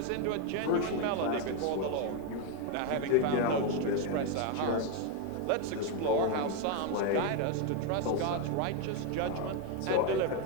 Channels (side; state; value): both; different; correlation 0.01